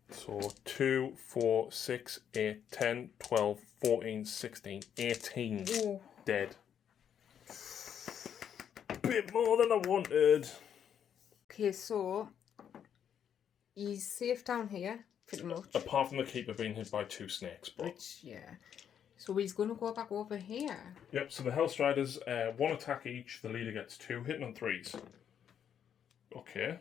So 2, 4, 6, 8, 10, 12, 14, 16, 18 Oh. dead. Bit more than I wanted. Okay, so he's safe down here, pretty much. Apart from the keeper being hit by 2 snakes, but Which, yeah. So he's going to go back over here. yep. So the Hellstriders, 1 attack each. The leader gets 2, hitting on 3s. Okay,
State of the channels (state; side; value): quieter; right; 8.7 dB